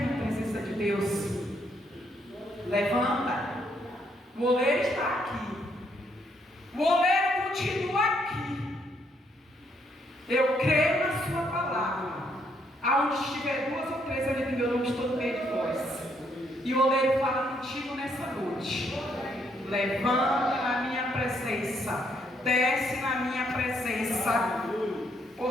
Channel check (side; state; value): both; normal; correlation 0.72